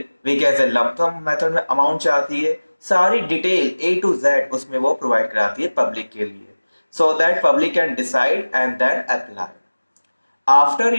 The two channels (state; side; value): inverted; both; correlation -1.00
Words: वी कैसे लंप सम मेथड में अमाउंट चाहती है, सारी डिटेल A to Z उसमें वो प्रोवाइड कराती है पब्लिक के लिए, so that public can decide and then apply. After